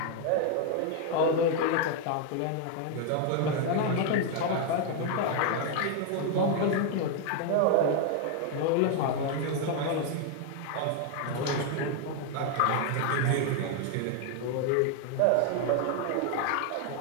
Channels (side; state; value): both; different; correlation 0.01